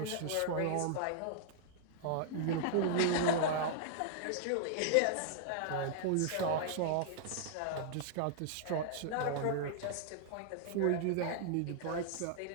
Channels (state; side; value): different; both; correlation -0.01